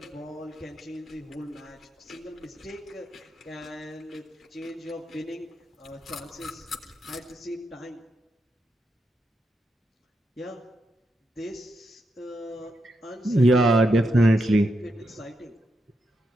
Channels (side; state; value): both; normal; correlation 0.84